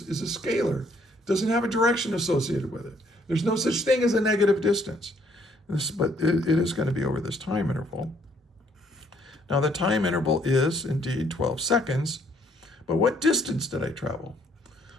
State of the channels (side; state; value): both; normal; correlation 0.66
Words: is a scalar. It doesn't have a direction associated with it. There's no such thing as a negative distance. But it is going to be over this time interval. Now, the time interval is indeed 12 seconds. But what distance did I travel?